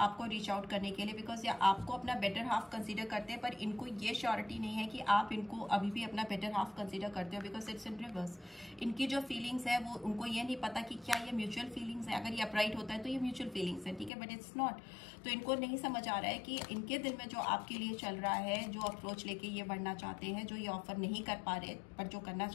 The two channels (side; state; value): right; drops out; at 14.1 s